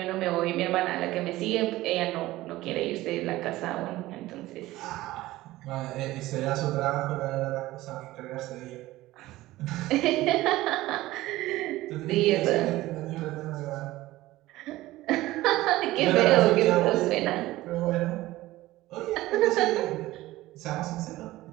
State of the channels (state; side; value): quieter; left; 17.2 dB